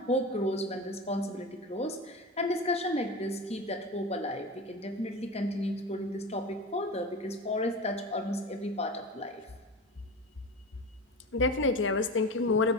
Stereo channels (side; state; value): both; normal; correlation 0.28